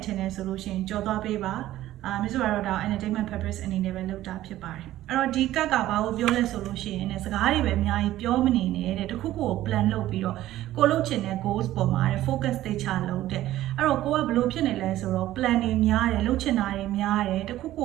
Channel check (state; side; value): quieter; left; 14.4 dB